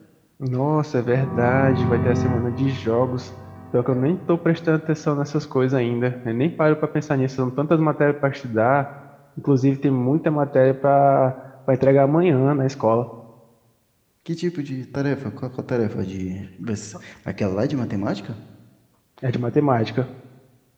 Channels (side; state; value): both; identical; correlation 1.00